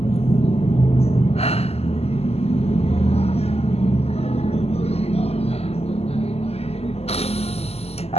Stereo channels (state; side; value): late; right; 0.29 ms